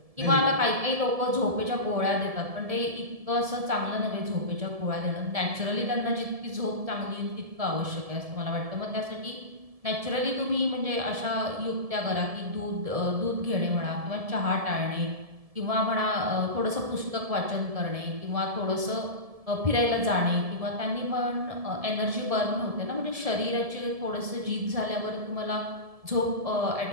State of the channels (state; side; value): late; left; 1.7 ms